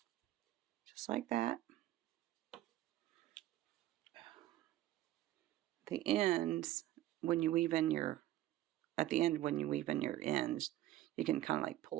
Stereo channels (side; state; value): left; quieter; 14.5 dB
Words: just like that. The ends, when you weave in your, at the end when you weave in your ends, you can kind of like